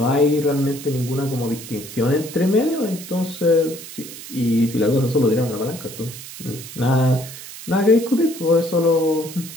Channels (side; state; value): right; noise; hiss, 13 dB below the sound